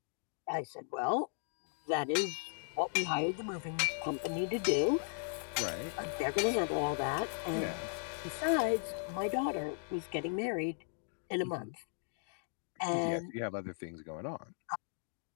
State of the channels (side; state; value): right; silent; digital silence